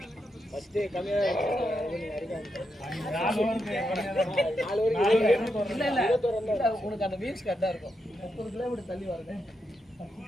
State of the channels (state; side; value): normal; both; correlation 0.84